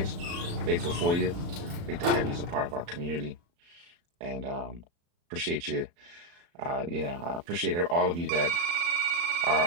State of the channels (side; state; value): left; late; 35 ms